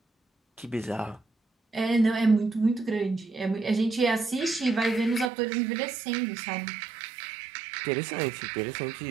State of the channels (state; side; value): drops out; left; at 5.3 s